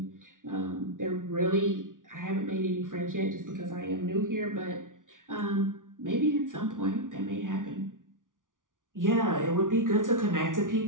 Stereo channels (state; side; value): late; left; 0.88 ms